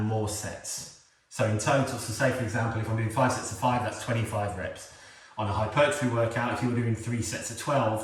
more sets. So in total, so say for example, if I'm doing 5 sets of 5, that's 25 reps. On a hypertrophy workout, if you were doing 3 sets of 12,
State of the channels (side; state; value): both; identical; correlation 1.00